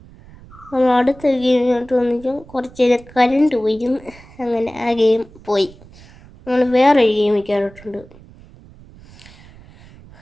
നമ്മൾ അടുത്ത ഗെയിമിലോട്ട് വന്നിട്ട് കുറച്ച് നേരം കരണ്ട് പോയിരുന്നു. അങ്ങനെ ആ ഗെയിം പോയി. നമ്മൾ വേറൊരു ഗെയിമിൽ കയറിയിട്ടുണ്ട്.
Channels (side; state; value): right; noise; rumble, 22 dB below the sound